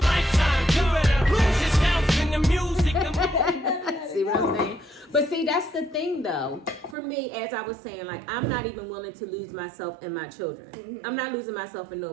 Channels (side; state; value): left; drops out; at 7.0 s